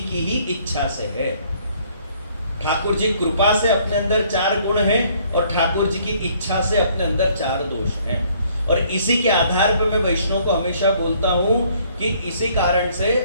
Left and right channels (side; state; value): both; inverted; correlation -0.62